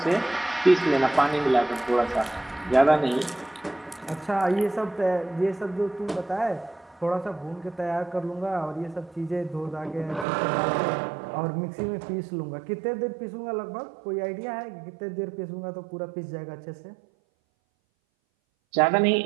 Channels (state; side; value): drops out; left; at 10.2 s